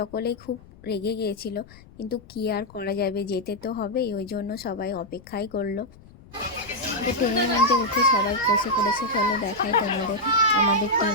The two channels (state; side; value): noise; left; rumble, 22 dB below the sound